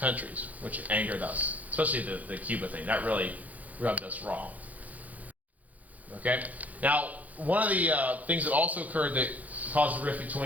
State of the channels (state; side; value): late; left; 0.077 ms